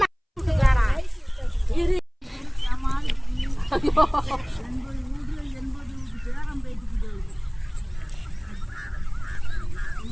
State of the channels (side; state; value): both; identical; correlation 1.00